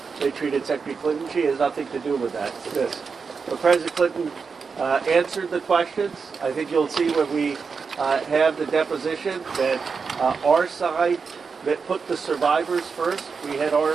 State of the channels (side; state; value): left; quieter; 5.3 dB